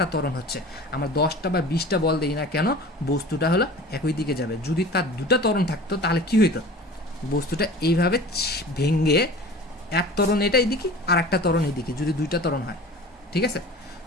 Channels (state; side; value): normal; both; correlation 0.40